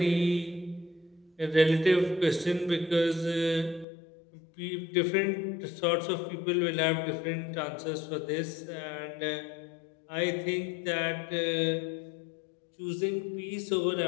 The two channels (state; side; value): drops out; right; at 3.9 s